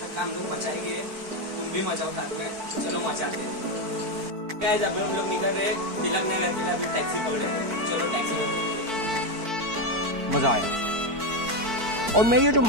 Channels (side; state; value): left; late; 4.5 ms